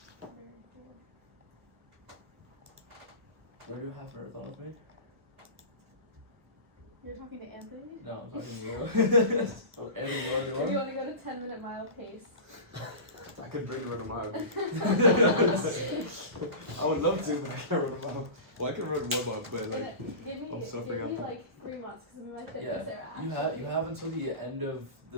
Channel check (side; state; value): left; late; 1.1 ms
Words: Very cool. Do I do a half marathon with me? You're talking to Anthony? No, I'm talking to you. Oh, Anthony, you wanna do If you one? wanna go to 10-minute mile pace. I could bring run a mile. I would love to, but I can't run a mile. Well, I can run 1 mile, but like, Give I'm me suffering out. like 3 months, cause my fitness Yeah, there you actually. have until the end of